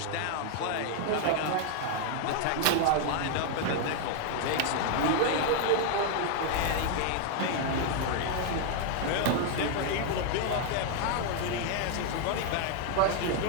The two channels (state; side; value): different; both; correlation 0.00